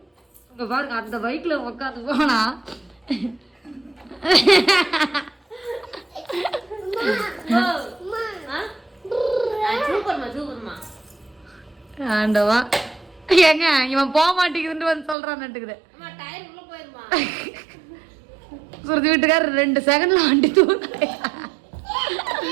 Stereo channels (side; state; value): left; drops out; at 15.2 s